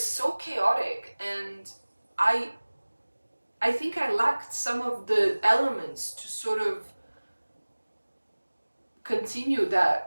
so chaotic, and I think I lacked some of the elements to sort of continue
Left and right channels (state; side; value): inverted; both; correlation -1.00